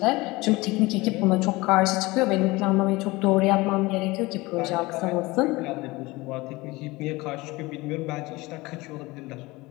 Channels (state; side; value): quieter; right; 21.7 dB